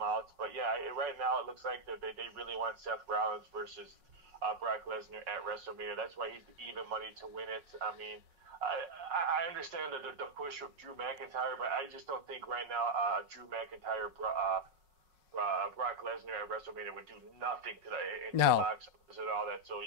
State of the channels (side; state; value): left; late; 5.5 ms